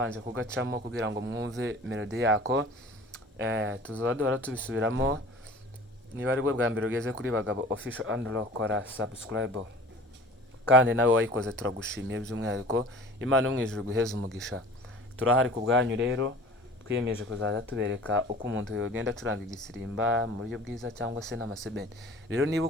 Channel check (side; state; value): both; normal; correlation 0.43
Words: kugacamo kugira ngo mwumve melody yako. Tuzaba duhora tubisubiramo. Niba ari bwo bwa mbere ugeze kuri Bagabo Official Andro, kora subscribe. Kandi nawe wayikoze turagushimiye by'umwihariko. Imana yo mu ijuru guheza umugisha. Turahari ku bwanyu rero. Twiyemeje kuzaza tubereka uko umuntu yogenda acuranga igisirimba mu buryo bwiza cyangwa se n'amaseben. Rero niba